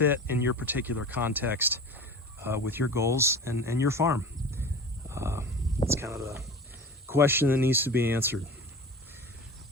in your particular context with your goals and your farm. It's kind of the question that needs to be answered.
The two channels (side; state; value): both; normal; correlation 0.35